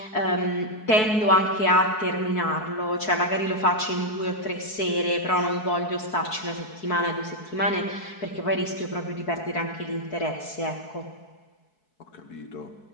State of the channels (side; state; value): right; late; 4.7 ms